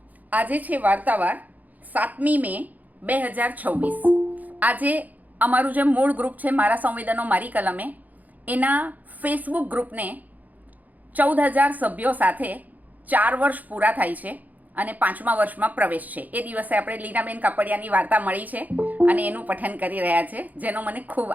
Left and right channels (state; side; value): late; left; 0.080 ms